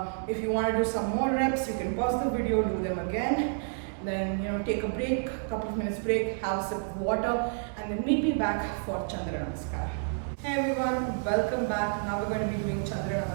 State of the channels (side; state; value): left; silent; 58 dB below the other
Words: if you want to do some more reps, you can pause the video, do them again. Then take a break, a couple of minutes break, have a sip of water, and then meet me back for Chandra Namaskar. Hey everyone, welcome back. Now we're going to be doing Chandra